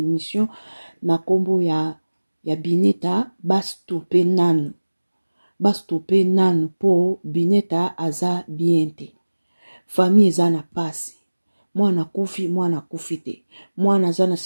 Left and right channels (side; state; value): both; inverted; correlation -1.00